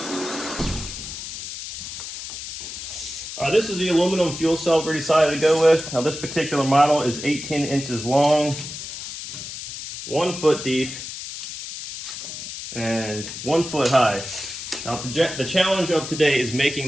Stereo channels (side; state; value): left; noise; hiss, 9 dB below the sound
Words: This is the aluminum fuel cell we decided to go with. Now this particular model is 18 inches long, 1 foot deep, and 1 foot high. Now the challenge of today is